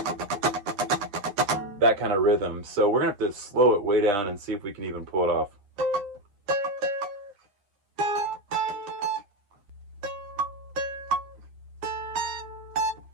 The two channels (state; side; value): late; left; 9.9 ms